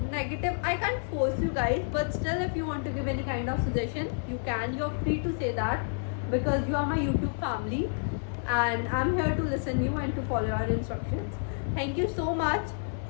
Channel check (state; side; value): silent; right; 58 dB below the other